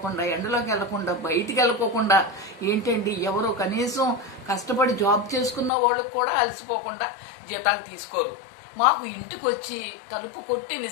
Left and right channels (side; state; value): right; drops out; at 5.7 s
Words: ఎండలోకి వెళ్లకుండా, బయటికి వెళ్ళకోకుండా, ఏంటండి ఎవరో కనీసం కష్టపడి జాబ్ చేసుకున్న వాళ్ళకు కూడా అలసిపోకుండా జీతాలు తీసుకోరు. మాకు ఇంటికి వచ్చి తలుపు కొట్టి